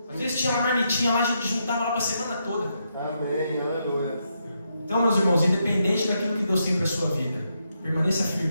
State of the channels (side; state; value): both; inverted; correlation -0.81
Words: Às vezes tinha uma marmitinha lá, a gente juntava lá para a semana toda. Amém, aleluia. Então, meus irmãos, independente daquilo que Deus tem para a sua vida, permaneça